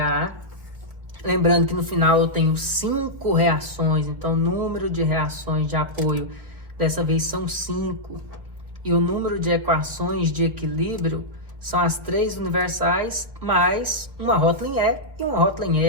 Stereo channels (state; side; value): late; left; 1.7 ms